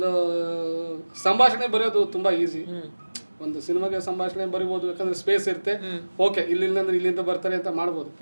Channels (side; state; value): both; inverted; correlation -1.00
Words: ಸಂಭಾಷಣೆ ಬರೆಯೋದು ತುಂಬ ಈಸಿ. ಒಂದು ಸಿನಿಮಾಗೆ ಸಂಭಾಷಣೆ ಬರಿಬೋದು, ಯಾಕಂದ್ರೆ ಸ್ಪೇಸ್ ಇರುತ್ತೆ, ಓಕೆ ಇಲ್ಲಿಂದ್ರೆ ಇಲ್ಲಿಂದ ಬರ್ತಾರೆ ಅಂತ ಮಾಡ್ಬೋದು.